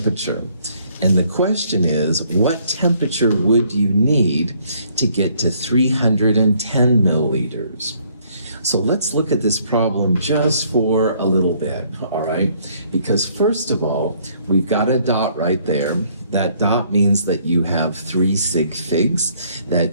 And the question is, what temperature would you need to get to 310 milliliters? So let's look at this problem just for a little bit, all right? Because first of all, we've got a dot right there. That dot means that you have 3 sig figs.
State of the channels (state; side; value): inverted; both; correlation -0.64